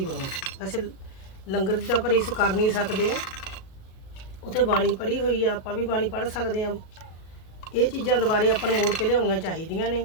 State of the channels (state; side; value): late; right; 37 ms